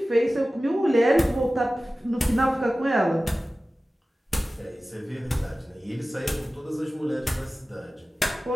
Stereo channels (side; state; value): both; normal; correlation 0.96